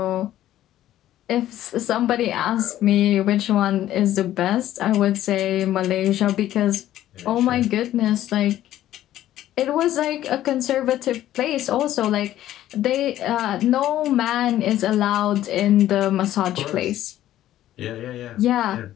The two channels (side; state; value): right; quieter; 13.1 dB